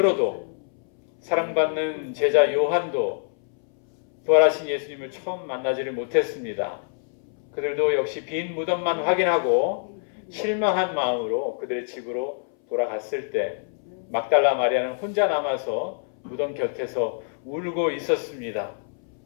사랑받는 제자 요한도 부활하신 예수님을 처음 만나지를 못했습니다. 그들도 역시 빈 무덤만 확인하고 실망한 마음으로 그들의 집으로 돌아갔을 때 막달라 마리아는 혼자 남아서 무덤 곁에서 울고 있었습니다.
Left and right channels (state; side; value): silent; right; 62 dB below the other